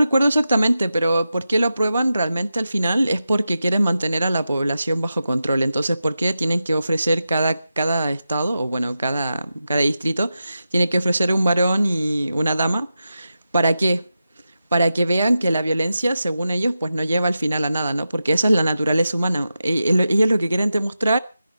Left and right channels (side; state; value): both; inverted; correlation -0.90